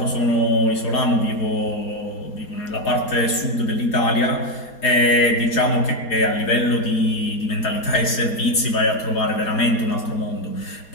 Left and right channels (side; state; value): right; late; 4.3 ms